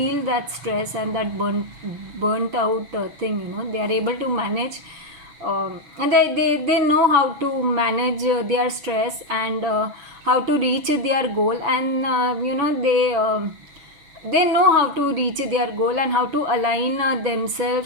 that stress and that burnt out thing. They are able to manage, and they know how to manage their stress and how to reach their goal, and they know how to reach their goal and how to align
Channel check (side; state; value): left; late; 7.1 ms